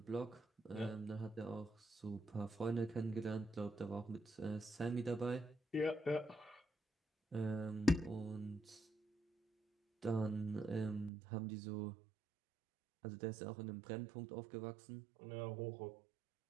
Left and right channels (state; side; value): drops out; left; at 11.1 s